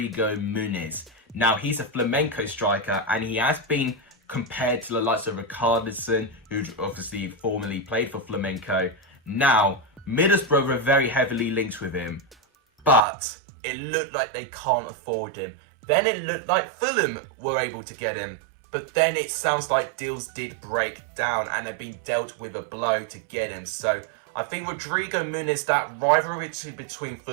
Muniz. Now, he's a flamenco striker, and he has been compared to the likes of Richarlison, who obviously formerly played for Flamenco. Now, Middlesbrough were very heavily linked with him, but it looked like they can't afford him. Then it looked like Fulham were able to get him, but then it sounds like deals did break down and they've been dealt with a blow to get him. So I think Rodrigo Muniz, that rivalry between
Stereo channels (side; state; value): left; drops out; at 13.0 s